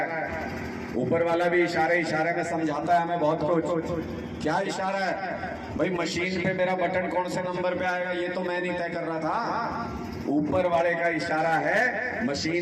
ऊपर वाला भी इशारे में समझाता है हमें बहुत कुछ। क्या इशारा है भाई? मशीन पे मेरा बटन कौन से नंबर पे आएगा ये तो मैं नहीं तय कर रहा था। ऊपर वाले का इशारा है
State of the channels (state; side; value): identical; both; correlation 1.00